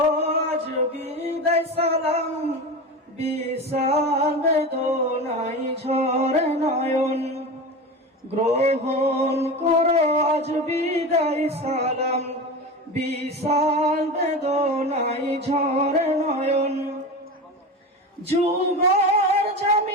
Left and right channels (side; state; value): both; normal; correlation 0.26